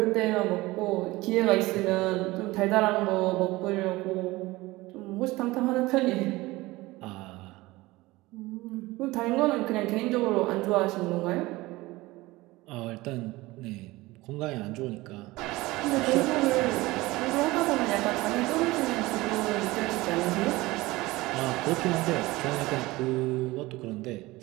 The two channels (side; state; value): left; quieter; 20.1 dB